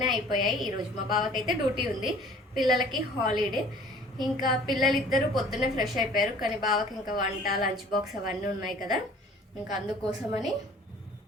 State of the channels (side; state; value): both; normal; correlation 0.50